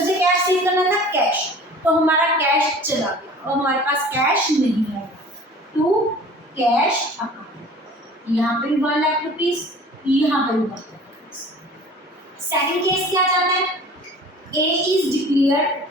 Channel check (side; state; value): both; normal; correlation 0.45